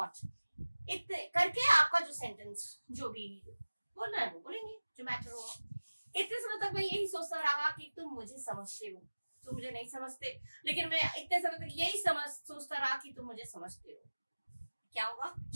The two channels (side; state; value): both; inverted; correlation -1.00